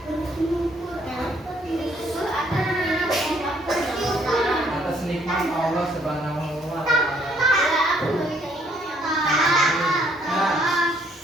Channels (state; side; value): normal; both; correlation 0.66